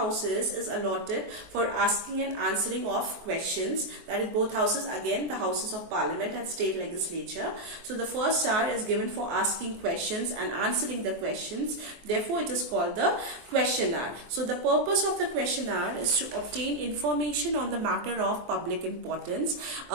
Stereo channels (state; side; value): late; left; 23 ms